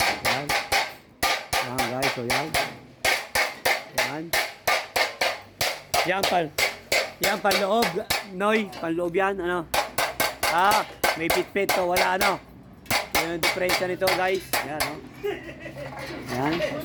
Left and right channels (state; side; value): identical; both; correlation 1.00